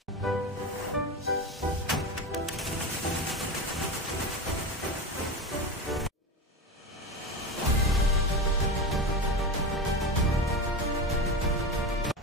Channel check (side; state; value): both; normal; correlation 0.22